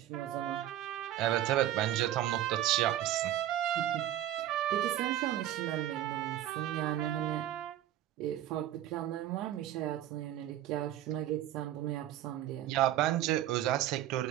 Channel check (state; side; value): quieter; left; 12.6 dB